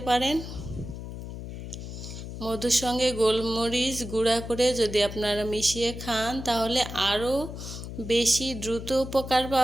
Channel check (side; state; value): left; noise; hum, 9 dB below the sound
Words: পারেন। মধুর সঙ্গে গোলমরিচ গুঁড়া করে যদি আপনারা মিশিয়ে খান তাহলে আরও বেশি দ্রুত উপকার